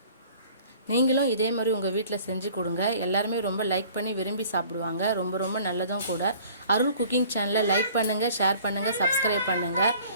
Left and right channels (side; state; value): both; inverted; correlation -0.51